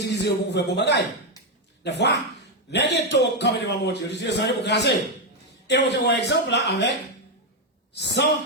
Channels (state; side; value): normal; both; correlation 0.04